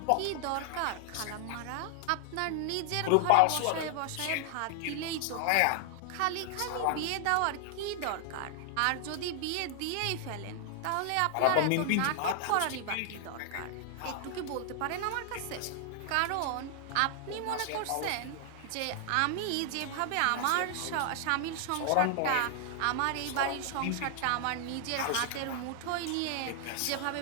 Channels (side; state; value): both; different; correlation 0.00